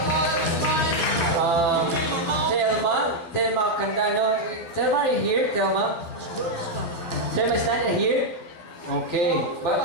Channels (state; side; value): late; right; 12 ms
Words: Telma Candano. Telma, are you here, Telma? Telma is not here? Okay. But